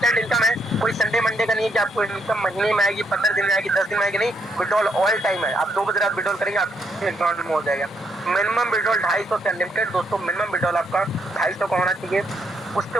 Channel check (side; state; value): both; normal; correlation 0.75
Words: इनकम है, कोई संडे मंडे का नहीं है कि आपको इनकम महीने में आएगी, 15 दिन में आएगी, 10 दिन में आएगी, नहीं, विड्रॉल ऑल टाइम है। आप 2 बजे रात विड्रॉल करेंगे आपके अकाउंट में हो जाएगा। मिनिमम विड्रॉल 250 से अनलिमिटेड दोस्तों, मिनिमम विड्रॉल आपका 250 का होना चाहिए, उसके